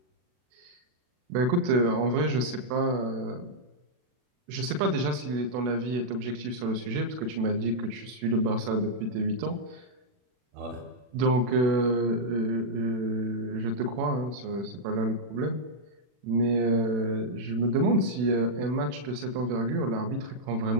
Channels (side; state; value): left; late; 40 ms